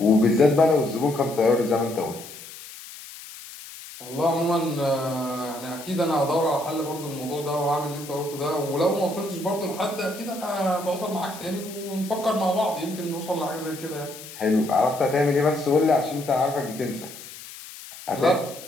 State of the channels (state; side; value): noise; left; hiss, 15 dB below the sound